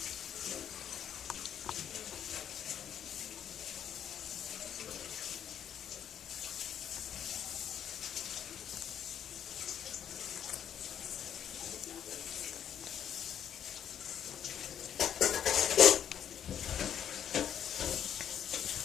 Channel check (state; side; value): quieter; right; 9.3 dB